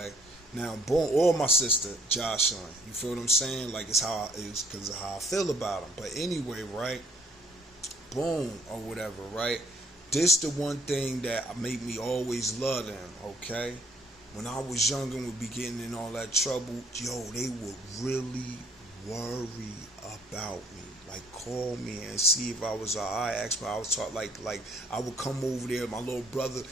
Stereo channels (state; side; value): normal; both; correlation 0.61